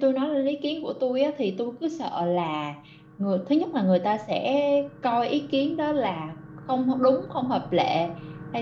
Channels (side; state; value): both; identical; correlation 1.00